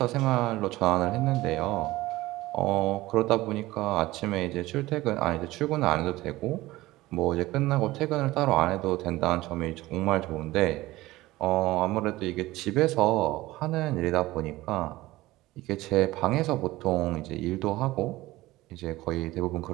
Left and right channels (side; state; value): left; quieter; 18.1 dB